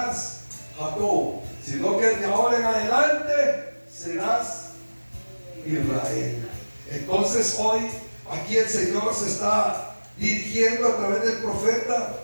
Jacob, sino que de ahora en adelante serás Israel. Entonces hoy aquí el Señor se está dirigiendo a través del profeta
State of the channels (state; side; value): inverted; both; correlation -1.00